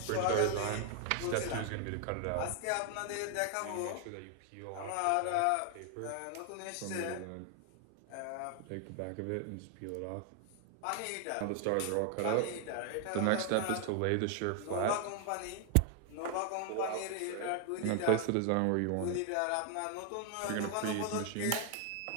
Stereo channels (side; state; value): both; different; correlation 0.00